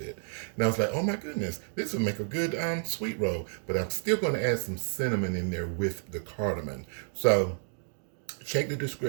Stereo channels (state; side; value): silent; left; 57 dB below the other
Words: And I was like, oh my goodness, this would make a good sweet roll. But I'm still going to add some cinnamon in there with the cardamom. So check the